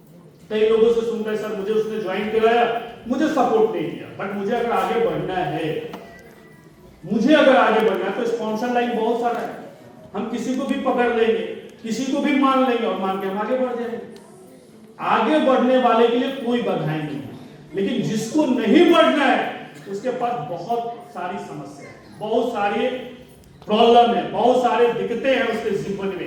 कई लोगों से सुनते हैं सर मुझे उसने ज्वाइन कराया, मुझे सपोर्ट नहीं किया। बट मुझे अगर आगे बढ़ना है तो स्पॉन्सर लाइन बहुत सारा है। हम किसी को भी पकड़ लेंगे, किसी को भी मान लेंगे और मान के हम आगे बढ़ जाएंगे। आगे बढ़ने वाले के लिए कोई बाधाएं नहीं है, लेकिन जिसको नहीं बढ़ना है उसके पास बहुत सारी समस्या है, बहुत सारी प्रॉब्लम है, बहुत सारे दिक्कतें हैं उसके जीवन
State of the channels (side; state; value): both; identical; correlation 1.00